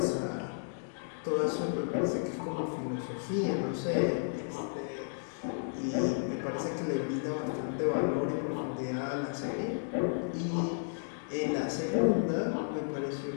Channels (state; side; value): silent; right; digital silence